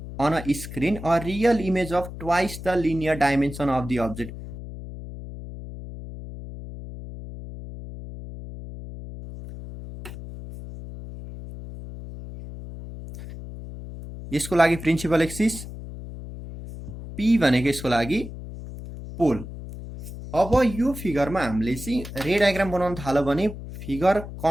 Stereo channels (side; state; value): left; noise; hum, 11 dB below the sound